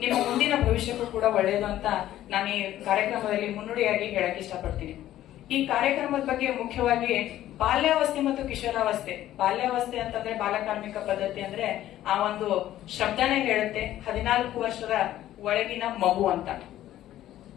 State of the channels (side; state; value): right; quieter; 13.3 dB